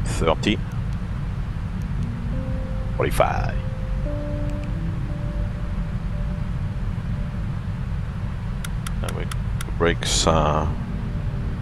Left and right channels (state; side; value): identical; both; correlation 1.00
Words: 30. 45. And we brakes.